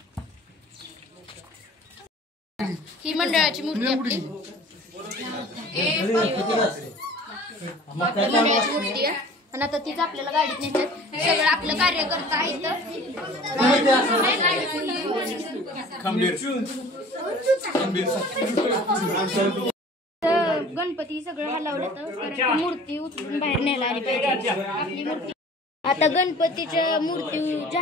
ही मंडळाची मूर्ती आपली, मंडळाची मूर्ती आहे। आणि आता तीच आपल्याला गाडीत नेतात। सगळं आपलं कार्यकर्ता आहे तर गणपती सगळं हलवलं तर मूर्ती उचलून बाहेर न्यायला आली पाहिजे आपली मूर्ती। आता गणपतीच्या मूर्ती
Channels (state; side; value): normal; both; correlation 0.46